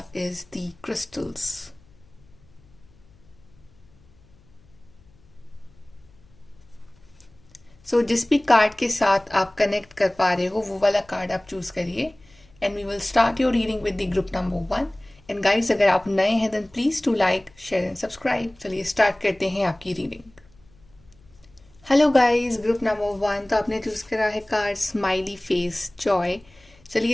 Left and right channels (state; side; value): noise; left; hum, 29 dB below the sound